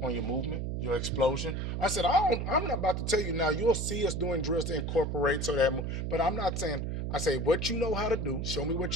on your movement, your explosion. I said, I'm not about to tell you now. You'll see us doing drills to incorporate so that, but I'm not saying. I say what you know how to do. Show me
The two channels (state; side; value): noise; right; hum, 2 dB below the sound